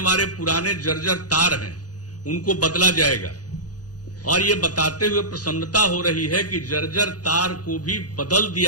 पुराने जर्जर तार हैं उनको बदला जाएगा, और ये बताते हुए प्रसन्नता हो रही है कि जर्जर तार को भी बदल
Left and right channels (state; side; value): late; right; 0.68 ms